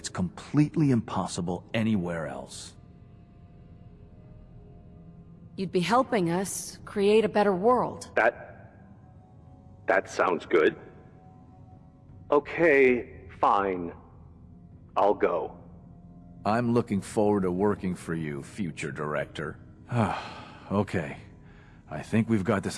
completely impossible anywhere else. You'd be helping us create a better world. That sounds good. Okay, fine. I'll go. I'm looking forward to working for you, future director. Okay. I think we've got this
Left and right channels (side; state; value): both; identical; correlation 1.00